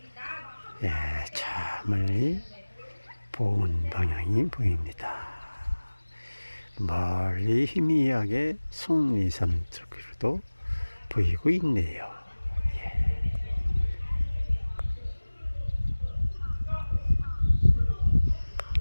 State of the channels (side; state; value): both; inverted; correlation -1.00